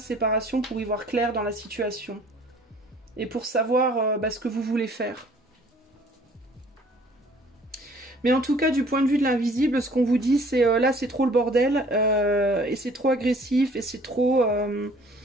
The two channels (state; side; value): normal; both; correlation 0.55